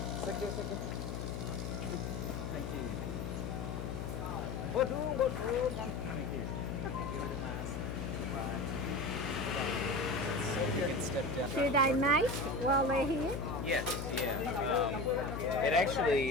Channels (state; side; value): noise; left; hum, 4 dB below the sound